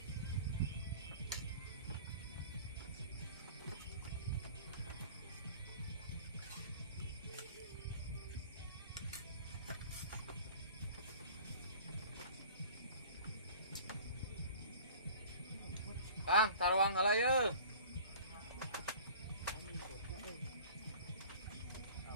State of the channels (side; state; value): both; inverted; correlation -0.44